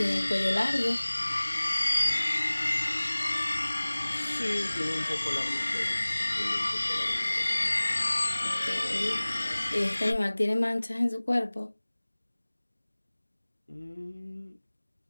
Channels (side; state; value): both; inverted; correlation -1.00